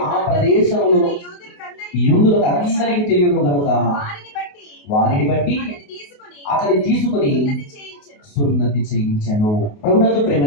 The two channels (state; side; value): late; right; 28 ms